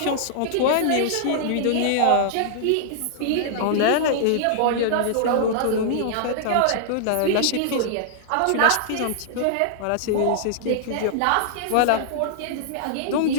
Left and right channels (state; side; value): different; both; correlation -0.01